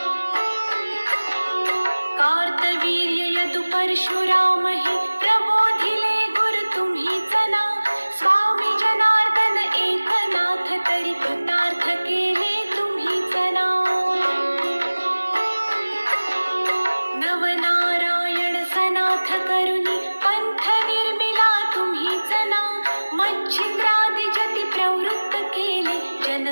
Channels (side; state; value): both; inverted; correlation -1.00